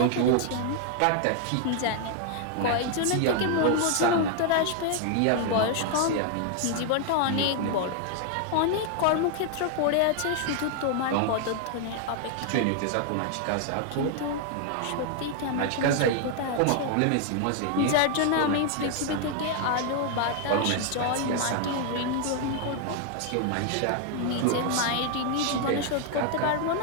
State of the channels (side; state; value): both; different; correlation 0.00